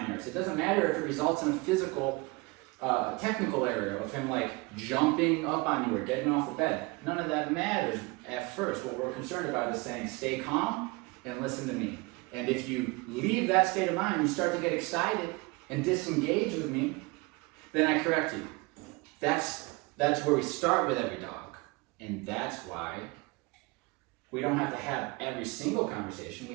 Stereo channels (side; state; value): left; quieter; 25.0 dB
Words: errors. It doesn't matter if it results in a physical, technical error of him like jumping up on you or getting off the bed. None of that matters at first. What we're concerned about is saying, stay calm and listen to me. And if you leave that state of mind, you start to get excited and disengage with me, then I correct you. That's where we start with every dog. And that's why we don't have to have every single conversation.